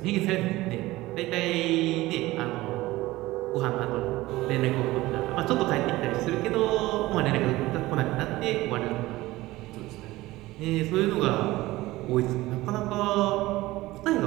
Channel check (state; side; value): quieter; left; 18.4 dB